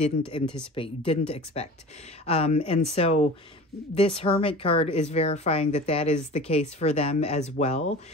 anticipate, you didn't expect. And so this Hermit card is verifying that that is the case for them as well.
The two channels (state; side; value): normal; both; correlation 0.38